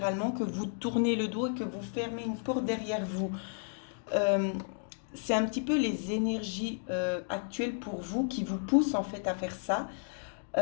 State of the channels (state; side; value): silent; right; digital silence